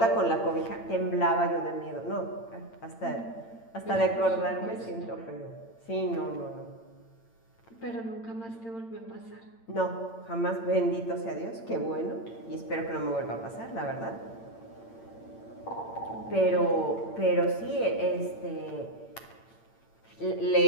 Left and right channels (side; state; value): right; late; 8.8 ms